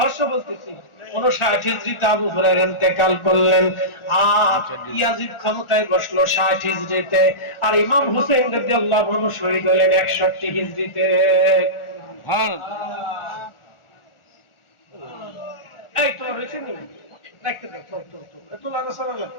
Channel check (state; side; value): late; right; 1.4 ms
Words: বলতেছি, 59 হিজরিতে আবু হুরায়রা ইন্তেকাল করলেন। আর ইয়াজিদ ক্ষমতায় বসলো 60 হিজরিতে, আর ইমাম হুসাইন রাদিয়াল্লাহু আনহু শহীদ হলেন 61 হিজরিতে। এই তো রেশনি দেখতে দাও, তো এত লাগা সারা লাগে।